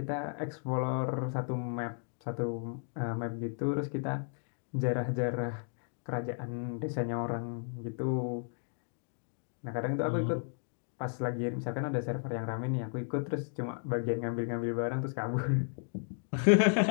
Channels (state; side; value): silent; right; 55 dB below the other